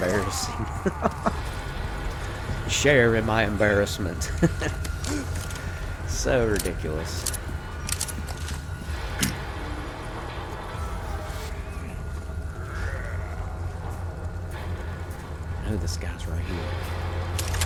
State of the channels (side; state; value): both; identical; correlation 1.00